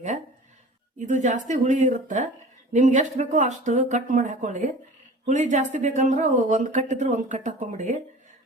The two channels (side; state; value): both; normal; correlation 0.41